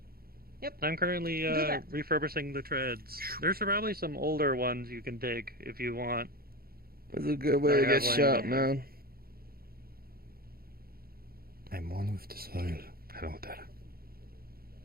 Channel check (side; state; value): left; late; 0.44 ms